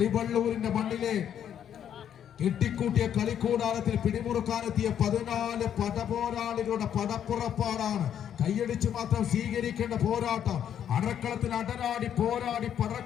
മണ്ണിലെ കെട്ടിക്കൂട്ടിയ കളിക്കൂടാരത്തിൽ പിടിമുറുക്കാനെത്തിയ 14 പടപോരാളികളുടെ പടപ്പുറപ്പാടാണ്. കൈയടിച്ചു മാത്രം സ്വീകരിക്കേണ്ട പോരാട്ടം. അടക്കളത്തിൽ അടരാടി പോരാടി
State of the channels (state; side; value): quieter; right; 9.4 dB